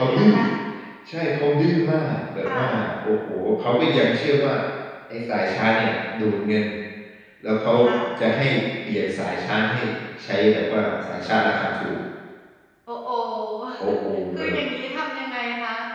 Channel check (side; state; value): both; identical; correlation 1.00